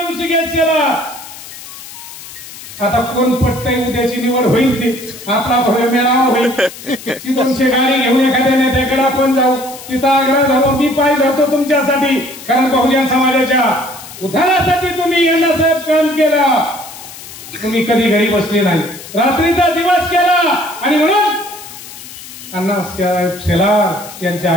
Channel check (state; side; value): noise; left; hiss, 15 dB below the sound